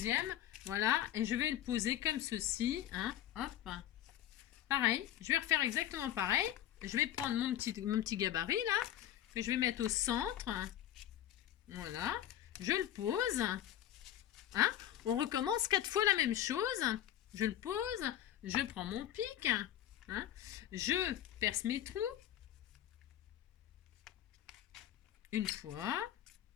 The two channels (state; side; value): quieter; right; 12.0 dB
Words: Voilà, et je vais le poser comme ceci. Hein, hop. Pareil, je vais refaire exactement pareil. Je vais prendre mon petit gabarit, là, que je vais mettre au centre. Voilà, je le pose. Hein. On recommence 4 fois la même chose. Je le pose. Je prends mon pic, hein, je perce mes trous, une fois.